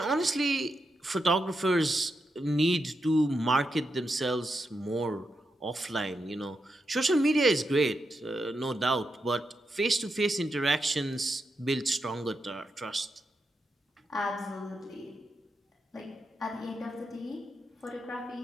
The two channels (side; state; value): both; normal; correlation 0.85